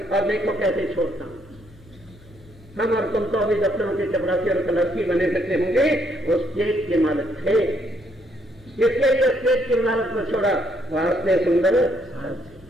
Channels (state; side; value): normal; both; correlation 0.71